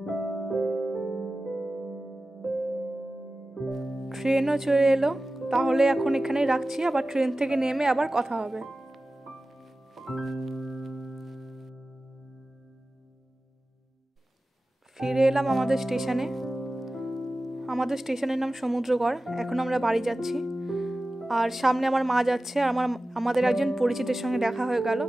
ট্রেনও চলে এলো, তাহলে এখন এখানেই রাখছি, আবার ট্রেন থেকে নেমে আবার কথা হবে। ফিরে এলাম আমাদের স্টেশনে। আমাদের স্টেশনের নাম সমুদ্রগড়। এখন আমরা বাড়ি যাচ্ছি। আর সামনে আমার মা যাচ্ছে, আর আমাদের একজন পরিচিতের সঙ্গে দেখা হয়ে গেল।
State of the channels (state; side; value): normal; both; correlation 0.95